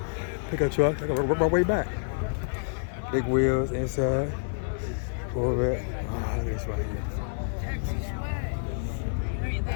Pickup truck. I gotta work my way back. Big wheels inside. Corvette. Oh, look at this right here.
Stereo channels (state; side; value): silent; right; digital silence